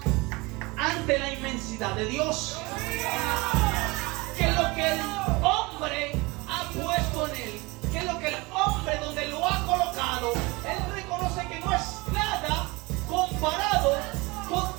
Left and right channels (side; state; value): left; quieter; 24.5 dB